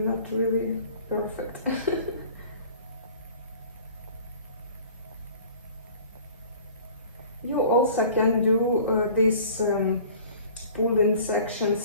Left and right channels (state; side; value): inverted; both; correlation -0.47